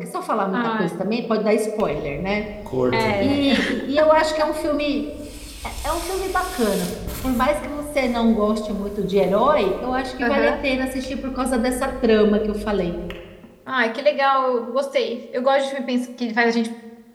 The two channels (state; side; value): identical; both; correlation 1.00